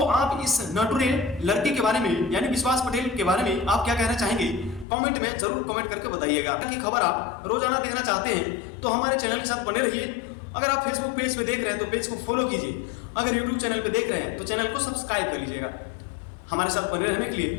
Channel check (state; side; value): drops out; right; at 4.9 s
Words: आप इस नटुरे लड़के के बारे में यानी विश्वास पटेल के बारे में आप क्या कहना चाहेंगे, कमेंट में जरूर कमेंट करके बताइएगा। की खबर आप रोजाना देखना चाहते हैं तो हमारे चैनल के साथ बने रहिए। अगर आप फेसबुक पेज पे देख रहे हैं तो पेज को फॉलो कीजिए, अगर यूट्यूब चैनल पे देख रहे हैं तो चैनल को सब्सक्राइब कर लीजिएगा। हमारे साथ बने रहने के